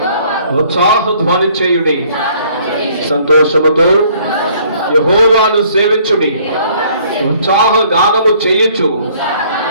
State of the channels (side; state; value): both; inverted; correlation -0.60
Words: ఉత్సాహ ధ్వని చేయుడి, సంతోషముతో యెహోవాను సేవించుడి, ఉత్సాహ గానము చేయుచు